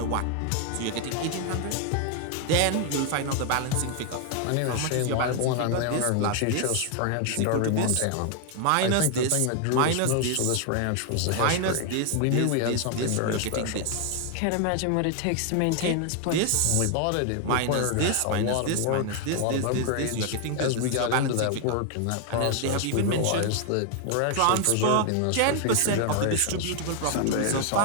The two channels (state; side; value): different; both; correlation 0.00